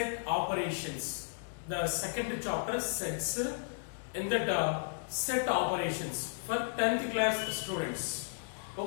operations. The second chapter sets in that set operations for 10th class students.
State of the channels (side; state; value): right; silent; digital silence